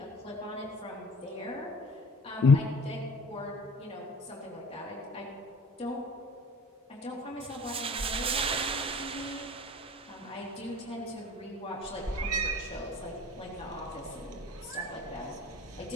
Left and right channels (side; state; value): both; normal; correlation 0.45